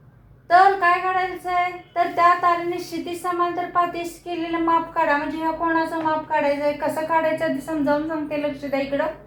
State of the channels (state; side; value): identical; both; correlation 1.00